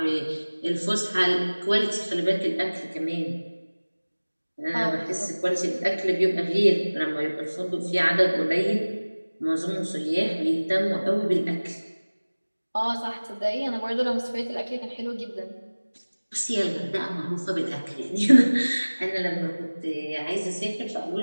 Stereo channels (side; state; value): both; inverted; correlation -1.00